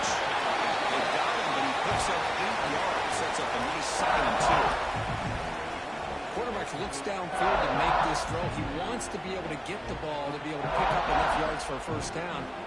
They got him, but he picks up 8 yards. Sets up a nice 2nd and 2. Quarterback looks downfield to make this throw. He wants to be able to get the ball to be able to pick up enough yards for a first down.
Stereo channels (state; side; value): identical; both; correlation 1.00